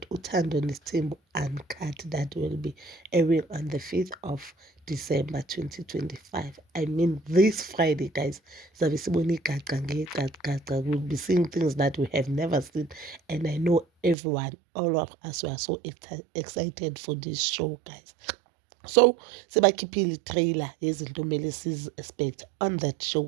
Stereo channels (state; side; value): drops out; left; at 14.2 s